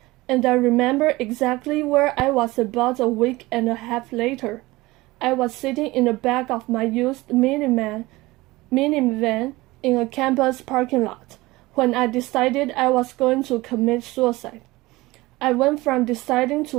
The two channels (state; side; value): quieter; left; 20.3 dB